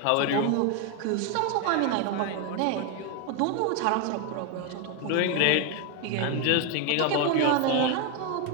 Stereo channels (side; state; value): both; different; correlation 0.01